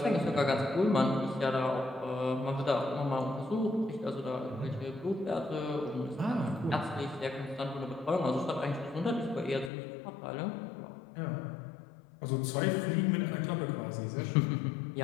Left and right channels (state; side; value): drops out; right; at 9.7 s